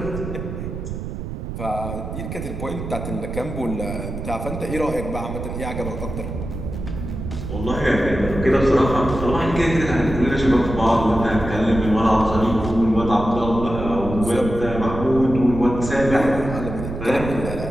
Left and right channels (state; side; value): noise; right; rumble, 7 dB below the sound